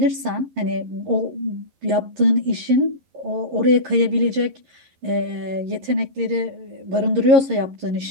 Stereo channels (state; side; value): late; left; 11 ms